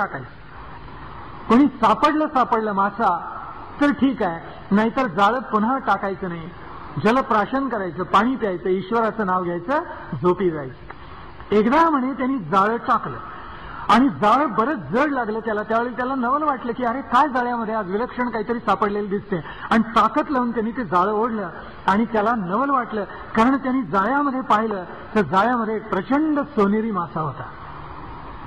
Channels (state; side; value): identical; both; correlation 1.00